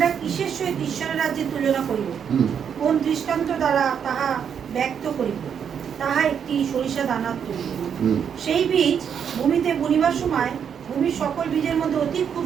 কিসের সহিত ঈশ্বরের রাজ্যে তুলনা করিব? কোন দৃষ্টান্ত দ্বারা তাহা ব্যক্ত করিব? তাহা একটি সরিষা দানার তুল্য। সেই বীজ ভূমিতে বুনিবার সময় ভূমির সকল বীজের মধ্যে অতি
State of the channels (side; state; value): left; quieter; 7.7 dB